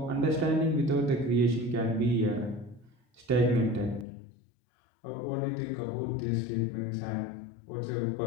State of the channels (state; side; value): drops out; right; at 4.0 s